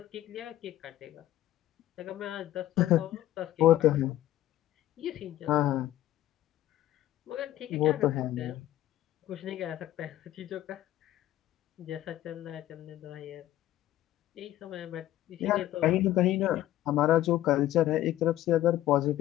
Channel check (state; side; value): quieter; right; 14.0 dB